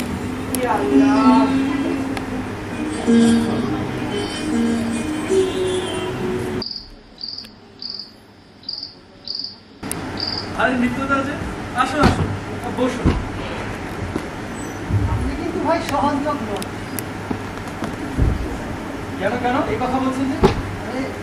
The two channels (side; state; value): both; identical; correlation 1.00